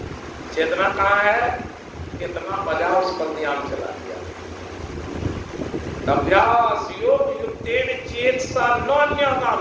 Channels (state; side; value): identical; both; correlation 1.00